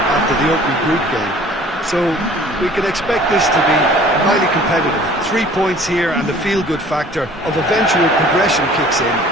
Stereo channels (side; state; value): both; normal; correlation 0.50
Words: after the opening group game. So we can expect this to be highly competitive. 3 points here and the feel-good factor of eventual progression kicks in.